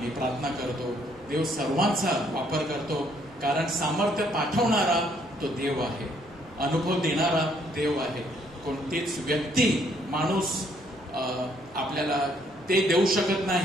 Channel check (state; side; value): normal; both; correlation 0.67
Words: प्रार्थना करतो, देव सर्वांचा वापर करतो. कारण सामर्थ्य पाठवणारा तो देव आहे, अनुभव देणारा देव आहे. कोणतीच व्यक्ती, माणूस आपल्याला ते देऊ शकत